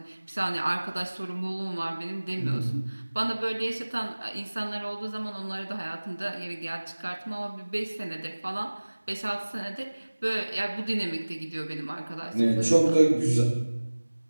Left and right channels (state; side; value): inverted; both; correlation -1.00